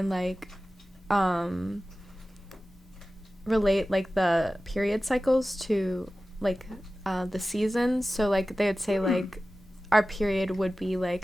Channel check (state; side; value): normal; both; correlation 0.96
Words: like relate like the period cycles to like the seasons. So like they would say like our period would be